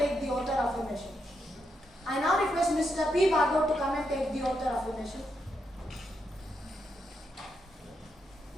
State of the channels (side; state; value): both; normal; correlation 0.82